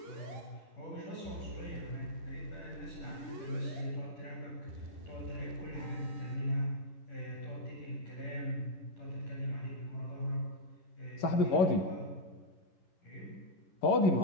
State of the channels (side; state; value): right; late; 11 ms